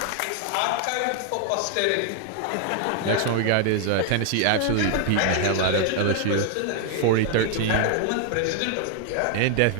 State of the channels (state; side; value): different; both; correlation 0.00